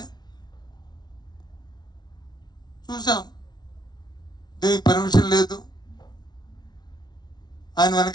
చూసాం దీనికి పర్మిషన్ లేదు, ఆయన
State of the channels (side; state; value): right; late; 0.20 ms